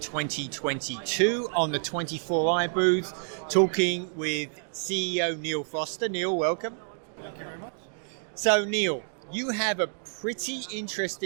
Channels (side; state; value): left; silent; digital silence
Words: 2022 on the 24i booth talking with CEO Neale Foster. Neale, welcome. Thank you very much. So Neale, you have a pretty